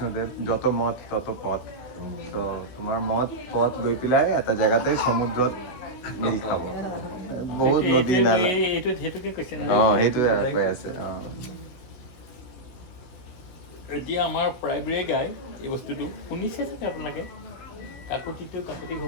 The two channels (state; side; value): late; right; 16 ms